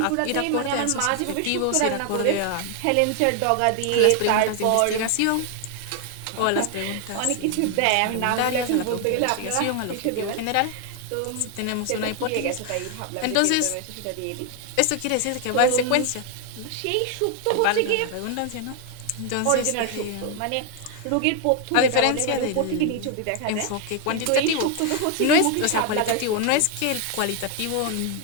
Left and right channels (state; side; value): different; both; correlation 0.00